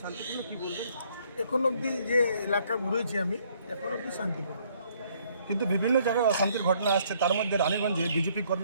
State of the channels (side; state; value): both; inverted; correlation -0.65